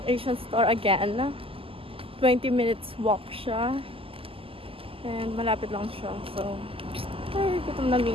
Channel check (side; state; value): left; late; 0.26 ms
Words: Asian store again. 20 minutes walk siya. And malapit lang siya. So, ay, gutom na mi.